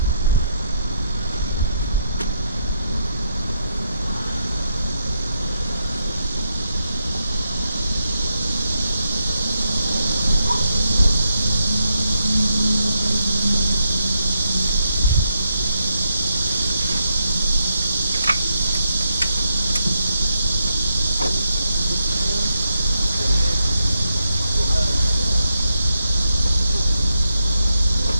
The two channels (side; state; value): both; inverted; correlation -0.81